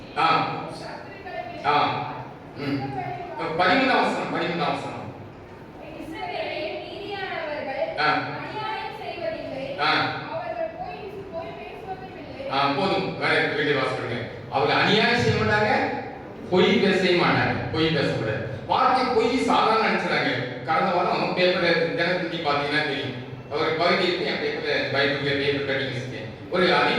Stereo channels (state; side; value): identical; both; correlation 1.00